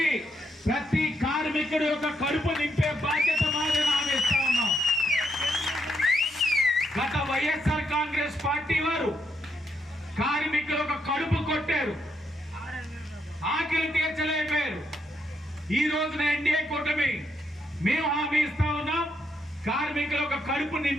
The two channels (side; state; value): both; normal; correlation 0.78